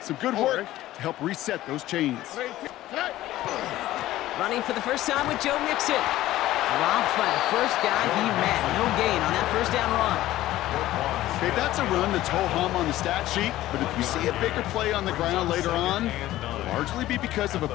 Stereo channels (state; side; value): quieter; right; 15.2 dB